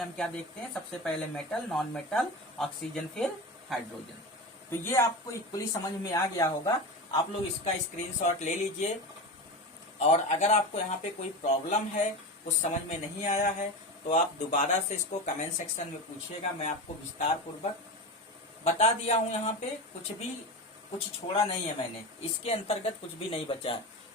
हम क्या देखते हैं, सबसे पहले मेटल, नॉन मेटल, ऑक्सीजन, फिर हाइड्रोजन। तो ये आपको इक्वली समझ में आ गया होगा। आप लोग इसका स्क्रीनशॉट ले लीजिए, और अगर आपको यहाँ पे कोई प्रॉब्लम है, कुछ समझ में नहीं आया है, तो आप दोबारा से इसको कमेंट सेक्शन में पूछिएगा। मैं आपको विस्तार पूर्वक बता दिया हूँ, यहाँ पे कुछ छोड़ा नहीं है मैंने, इसके अंतर्गत कुछ भी नहीं बचा है।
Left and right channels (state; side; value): normal; both; correlation 0.24